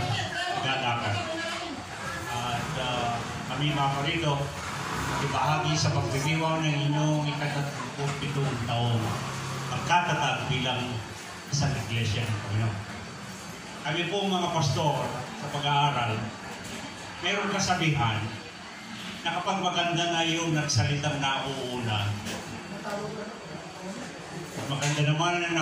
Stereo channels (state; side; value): identical; both; correlation 1.00